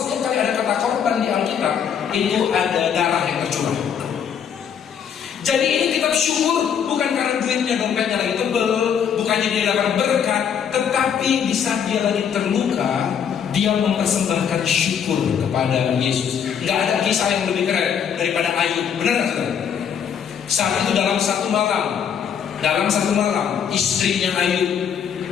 kali ada kata korban di Alkitab itu ada darah yang tercurah. Jadi ini kitab syukur bukan karena duitnya, dompetnya lagi tebel, bukannya dia dapat berkat, tetapi di saat dia lagi terluka, dia mempersembahkan syukur kepada Yesus. Gak ada kisah yang lebih keren daripada Ayub, benar nggak saudara? Saat itu dalam satu malam, istrinya Ayub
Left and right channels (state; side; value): quieter; right; 7.9 dB